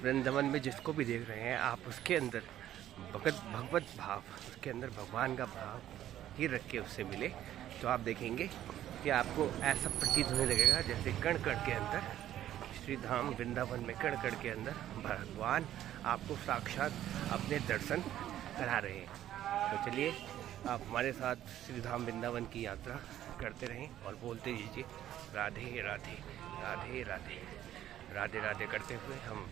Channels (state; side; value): quieter; left; 12.2 dB